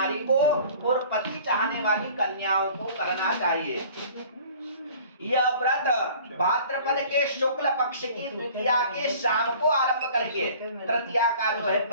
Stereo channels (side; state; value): both; inverted; correlation -0.48